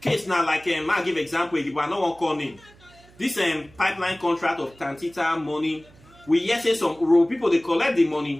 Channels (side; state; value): right; noise; hum, 26 dB below the sound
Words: case now, like I'll give example, but I don't want to call name. This pipeline contract of Tantita money, we yes say some Urhobo people they collect the